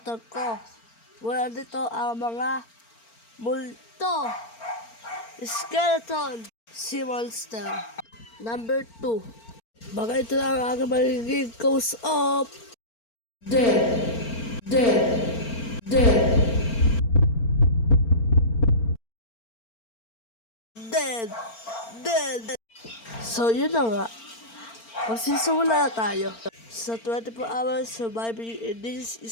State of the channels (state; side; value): late; right; 4.4 ms